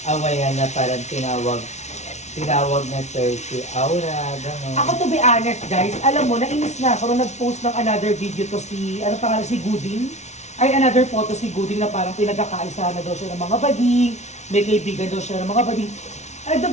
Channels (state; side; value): late; right; 0.32 ms